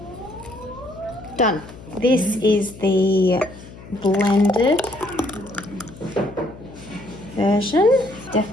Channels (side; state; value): left; noise; hum, 17 dB below the sound